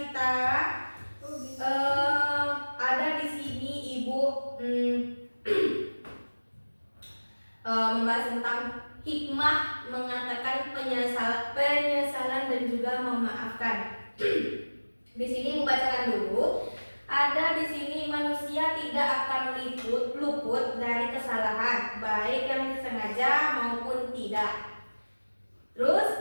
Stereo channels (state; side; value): inverted; both; correlation -1.00